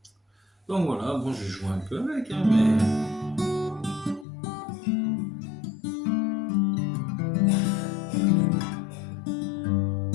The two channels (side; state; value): right; drops out; at 4.2 s